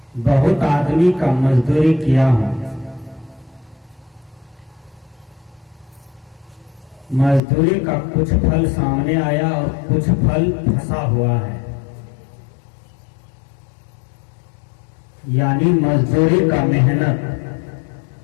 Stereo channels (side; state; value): right; drops out; at 7.4 s